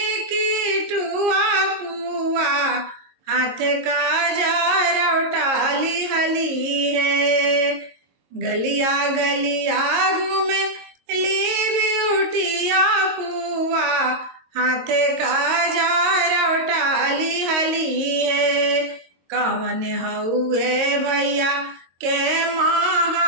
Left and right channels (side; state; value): left; late; 22 ms